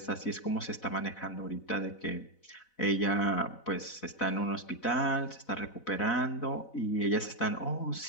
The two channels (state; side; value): late; right; 4.0 ms